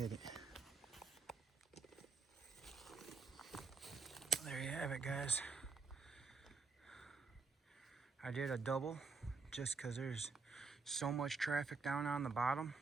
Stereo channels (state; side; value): quieter; left; 4.6 dB